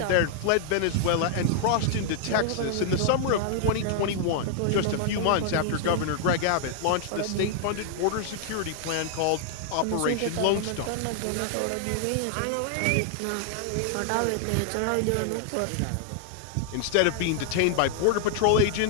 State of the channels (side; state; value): both; different; correlation 0.00